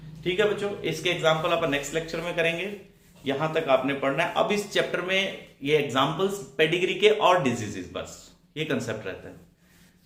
ठीक है बच्चों, इसके एग्जाम्पल आप नेक्स्ट लेक्चर में करेंगे। यहां तक आपने पढ़ना है। अब इस चैप्टर में ये एग्जाम्पल्स पेडिग्री के और डिजीजेस, बस ये कंसेप्ट रहता है।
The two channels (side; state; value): both; identical; correlation 1.00